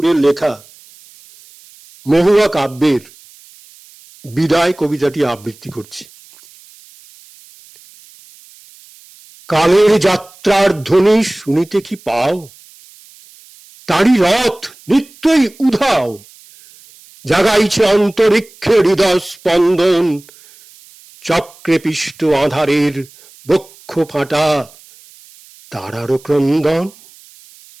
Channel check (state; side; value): noise; right; hiss, 25 dB below the sound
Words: লেখা মহুয়া কাব্যের বিদায় কবিতাটি আবৃত্তি করছি। কালের যাত্রার ধ্বনি শুনিতে কি পাও? তারি রথ নিত্যই উধাও, জাগাইছে অন্তরিক্ষে হৃদয় স্পন্দন, চক্রে পিষ্ট আধারের বক্ষ ফাটা তারারও ক্রন্দন।